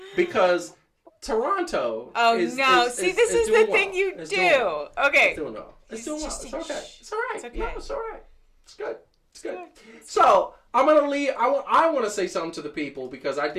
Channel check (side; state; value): both; identical; correlation 1.00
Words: Because Toronto is the thing you do. Okay. It's doing well. It's doing well. It's okay. It's all right. It's okay. No, it's all right. It's good. It's good. So I'm gonna leave. I want to say something to the people because I